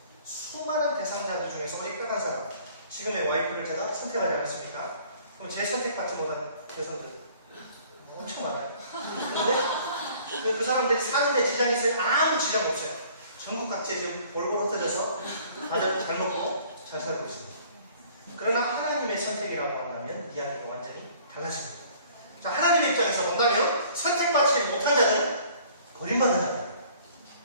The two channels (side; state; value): both; inverted; correlation -0.54